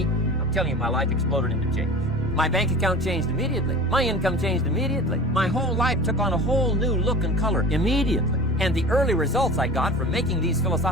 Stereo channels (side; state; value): both; normal; correlation 0.37